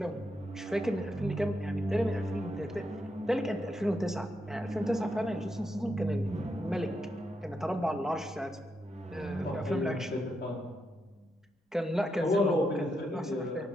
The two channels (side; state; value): both; normal; correlation 0.83